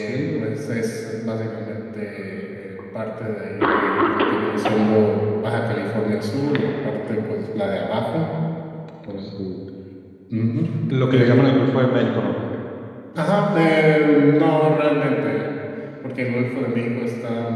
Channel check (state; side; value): identical; both; correlation 1.00